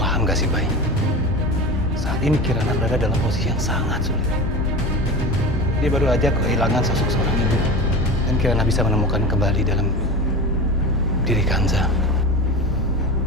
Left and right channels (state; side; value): normal; both; correlation 0.29